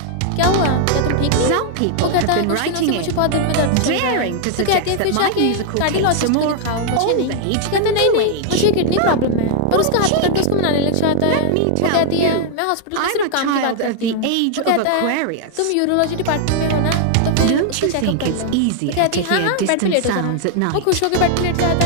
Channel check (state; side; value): different; both; correlation 0.00